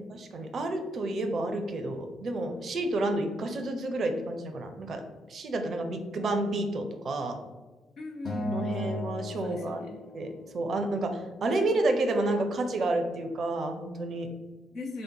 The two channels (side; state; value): both; normal; correlation 0.78